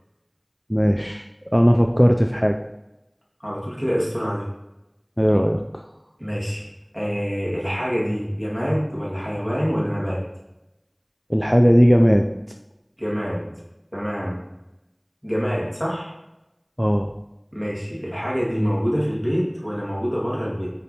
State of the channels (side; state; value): both; identical; correlation 1.00